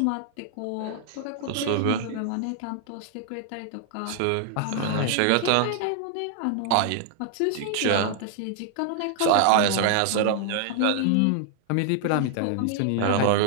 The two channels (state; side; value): different; both; correlation 0.00